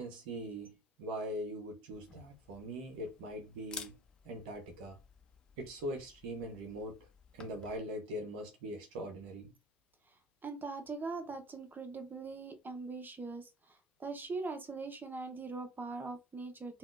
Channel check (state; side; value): normal; both; correlation 0.43